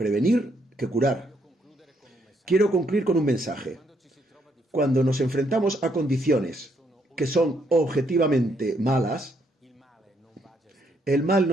que curar. Quiero concluir con un mensaje. Cuando nos enfrentamos a condiciones que son objetivamente malas, el mal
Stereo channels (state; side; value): normal; both; correlation 0.73